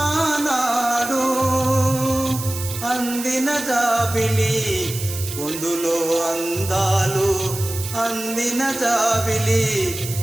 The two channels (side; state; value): right; noise; hiss, 9 dB below the sound